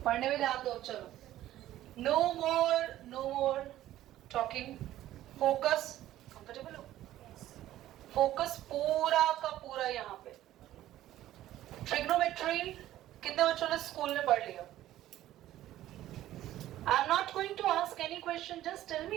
पढ़ने में ध्यान दो। चलो, no more talking, focus. Comfortable हो? फोकस पूरा का पूरा यहाँ पे। ट्रिग्नोमेट्री कितने बच्चों ने स्कूल में पढ़ लिया? I am not going to ask any question, just tell me,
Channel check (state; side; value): quieter; left; 13.8 dB